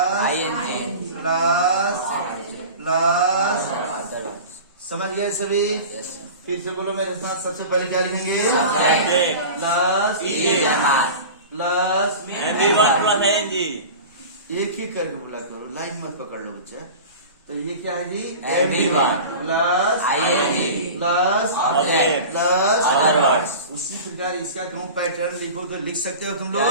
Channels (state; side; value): inverted; both; correlation -0.34